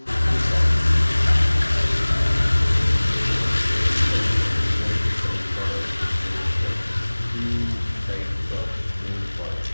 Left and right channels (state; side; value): inverted; both; correlation -1.00